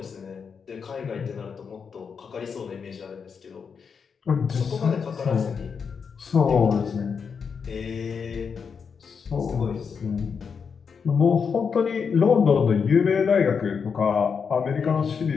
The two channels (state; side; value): quieter; right; 6.1 dB